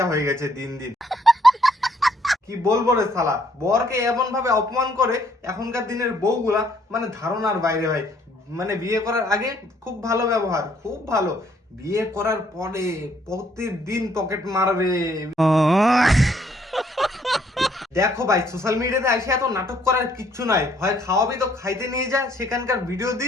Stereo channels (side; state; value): both; normal; correlation 0.66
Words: হয়ে গেছে দিন দিন। কি বলবো রে শালা, বরকে এমন ভাবে অপমান করে এখনকার দিনের বউগুলা, মানে ধারণার বাইরে ভাই। মানে বিয়ে করার আগে খুব ভালো ব্যবহার, খুব ভালো, বিয়ে করার পরে প্রতিদিন পকেট মারবে। দেখো ভাই, সোশ্যাল মিডিয়াতে এসে এত নাটক করার কিচ্ছু নাই। হয় খাওয়াবি তো খাইতে নিয়ে যা, সেখানকার ভিডিও